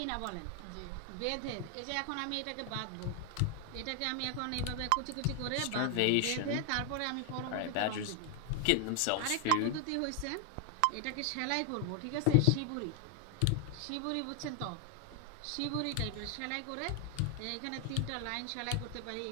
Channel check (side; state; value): both; different; correlation 0.00